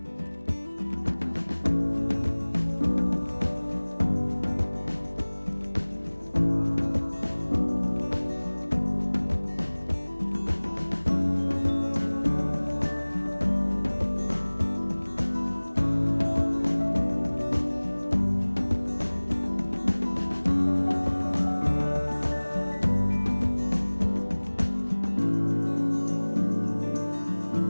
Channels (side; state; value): both; inverted; correlation -1.00